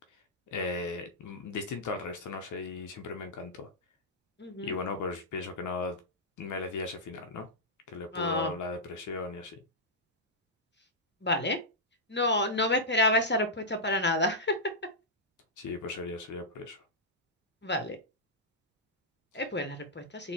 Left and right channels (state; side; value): normal; both; correlation -0.10